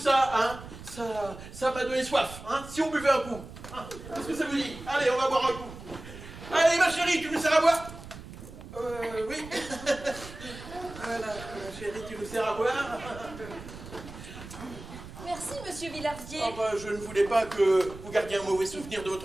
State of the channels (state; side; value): noise; right; rumble, 14 dB below the sound